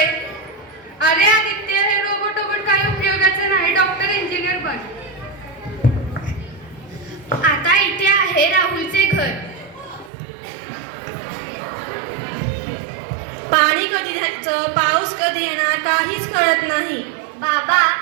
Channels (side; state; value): left; drops out; at 10.1 s